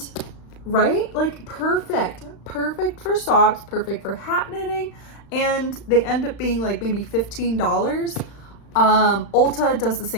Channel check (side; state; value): right; late; 35 ms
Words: right? Like perfect for socks, perfect for hat knitting, and they end up being like maybe $15. Ulta does the